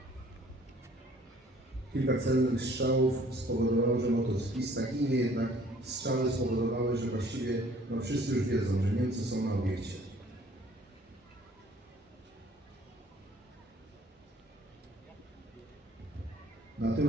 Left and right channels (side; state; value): both; normal; correlation 0.56